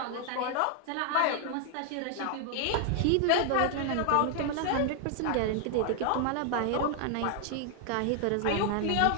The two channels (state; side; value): different; both; correlation 0.00